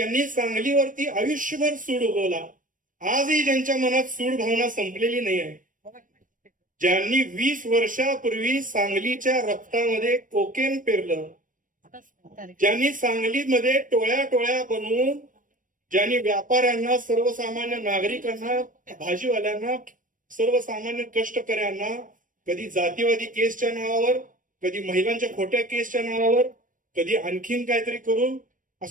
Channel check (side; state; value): left; late; 0.38 ms